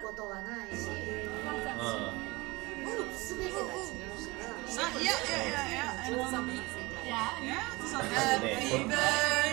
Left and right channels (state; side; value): quieter; left; 23.1 dB